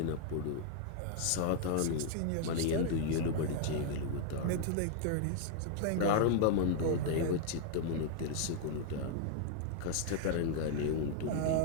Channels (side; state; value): both; different; correlation 0.00